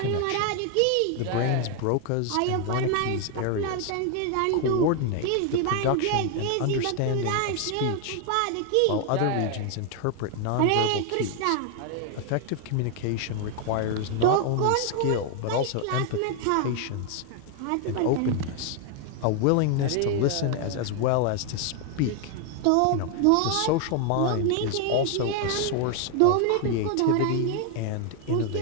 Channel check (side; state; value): both; different; correlation 0.00